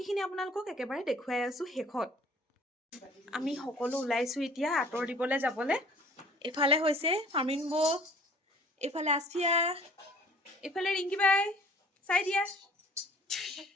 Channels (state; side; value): normal; both; correlation 0.51